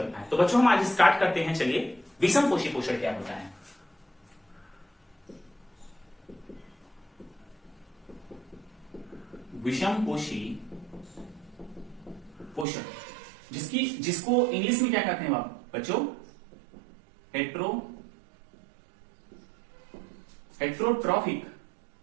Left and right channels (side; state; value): left; drops out; at 12.7 s